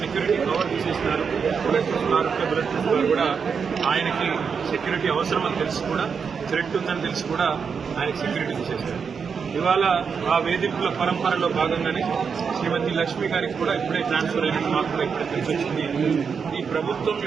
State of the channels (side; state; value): left; quieter; 6.1 dB